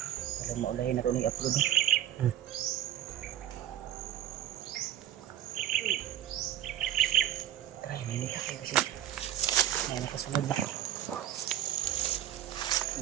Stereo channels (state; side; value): quieter; left; 11.9 dB